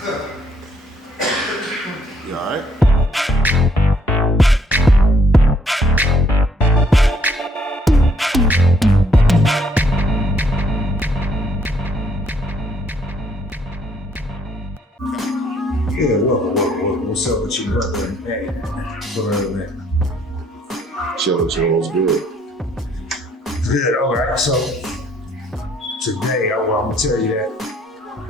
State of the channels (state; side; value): normal; both; correlation 0.66